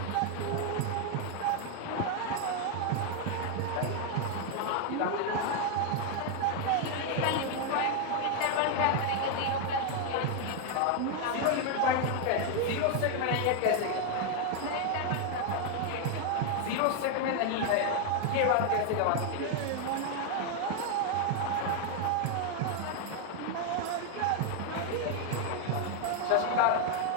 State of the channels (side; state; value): both; different; correlation 0.01